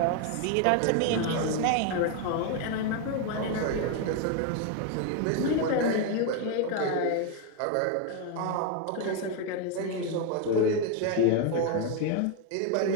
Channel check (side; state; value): both; different; correlation 0.01